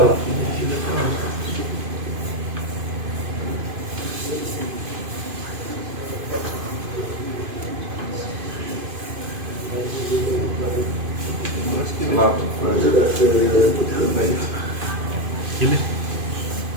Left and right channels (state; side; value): late; left; 2.5 ms